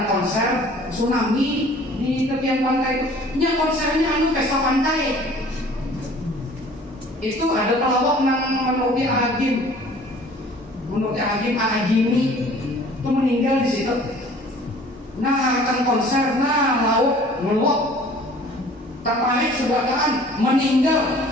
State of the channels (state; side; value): normal; both; correlation 0.50